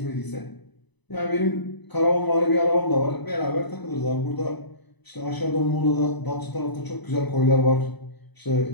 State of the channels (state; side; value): late; right; 1.0 ms